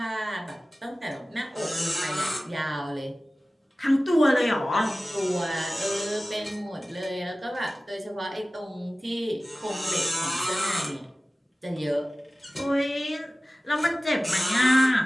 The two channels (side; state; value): both; normal; correlation 0.97